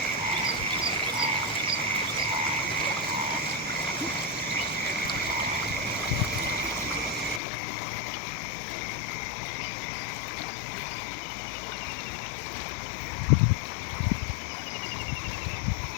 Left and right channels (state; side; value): drops out; right; at 7.4 s